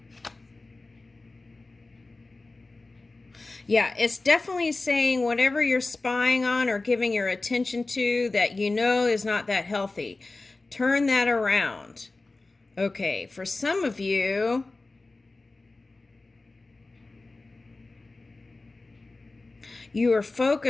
Yeah, it's definitely saying whatever you're spying on or giving your attention to that you know is not that healthy. Turn that around. Okay, for some of you, you were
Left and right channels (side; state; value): right; quieter; 3.3 dB